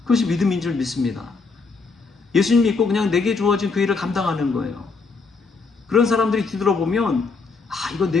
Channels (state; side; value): quieter; right; 4.4 dB